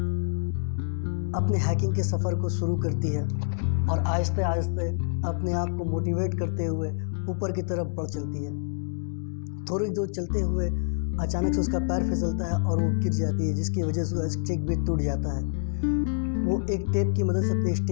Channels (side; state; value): right; silent; digital silence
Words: अपने हाइकिंग के सफ़र को शुरू करती है और आहिस्ते आहिस्ते अपने आप को मोटिवेट करते हुए ऊपर की तरफ बढ़ चलती है। थोड़ी दूर चलते हुए अचानक से उसका पैर फिसलता है और वो गिर जाती है, जिसकी वजह से उसका स्टिक भी टूट जाता है। वो एक टेप की मदद से अपने